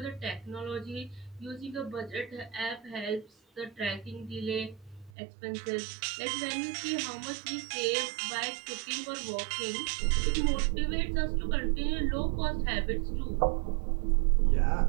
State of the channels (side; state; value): left; drops out; at 5.1 s